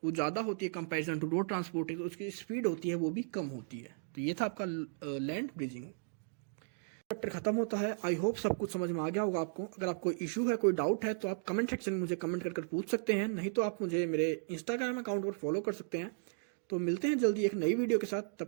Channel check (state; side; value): silent; left; digital silence